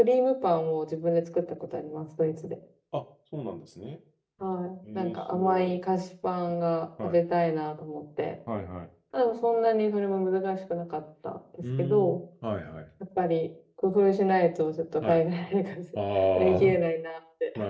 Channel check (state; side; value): identical; both; correlation 1.00